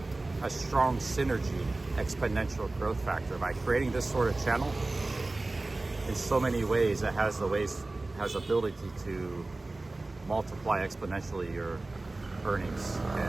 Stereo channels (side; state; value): left; quieter; 3.1 dB